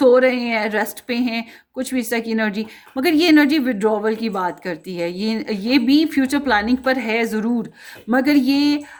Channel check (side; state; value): both; identical; correlation 1.00